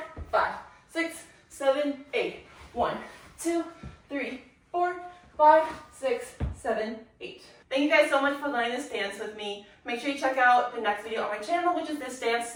5, 6, 7, 8, 1, 2, 3, 4, 5, 6, 7, 8. Thank you guys so much for learning this dance with me. Make sure you check out the next video on my channel, which is this dance,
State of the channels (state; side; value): identical; both; correlation 1.00